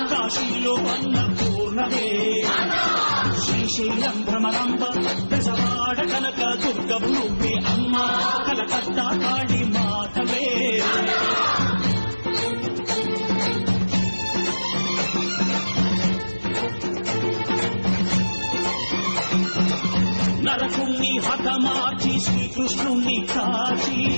కాశీలో అన్నపూర్ణవే, శ్రీశైలం భ్రమరాంబ, దశవాడ కనక దుర్గవు నువ్వే అమ్మ. కలకత్తా కాళీ మాతవే. నరకుణ్ణి హతమార్చి శ్రీకృష్ణుణ్ణి కాచి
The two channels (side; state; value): both; inverted; correlation -1.00